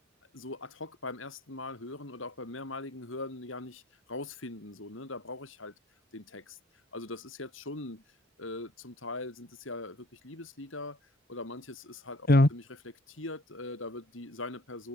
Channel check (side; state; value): both; normal; correlation 0.54